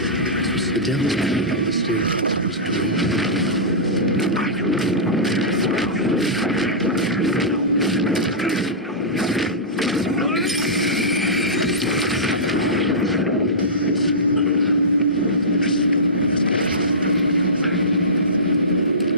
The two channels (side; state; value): both; normal; correlation -0.18